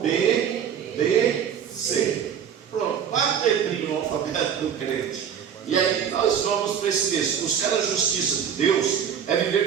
B, D, C. Pronto. 4 letrinhas no alfabeto do crente. E aí nós vamos para esse texto. Buscar a justiça de Deus é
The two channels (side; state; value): left; quieter; 8.2 dB